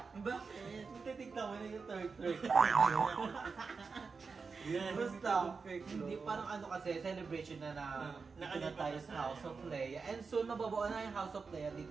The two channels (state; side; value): quieter; left; 4.8 dB